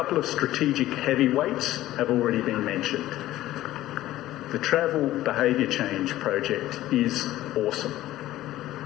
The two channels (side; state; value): right; quieter; 15.0 dB